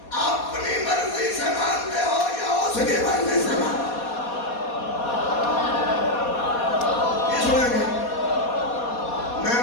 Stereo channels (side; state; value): right; late; 4.2 ms